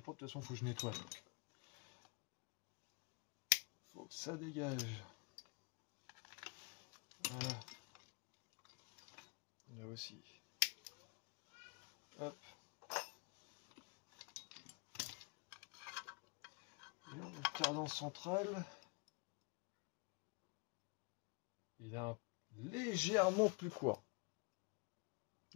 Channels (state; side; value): quieter; right; 30.6 dB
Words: propres. De toute façon, il faut que je nettoie. Donc. Faut que ça dégage. Voilà. Là aussi. Hop. Et le cardan central. Il est légèrement plus court. Il